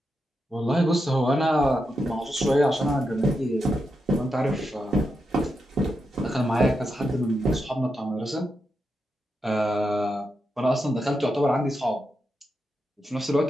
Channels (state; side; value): normal; both; correlation 0.86